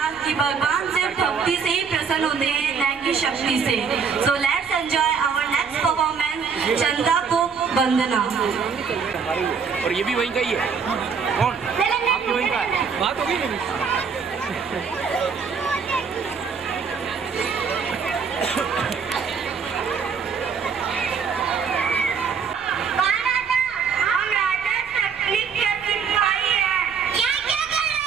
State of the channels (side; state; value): left; quieter; 6.0 dB